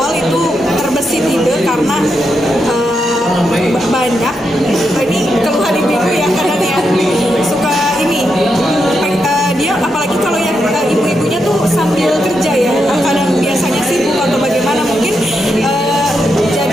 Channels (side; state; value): both; normal; correlation 0.84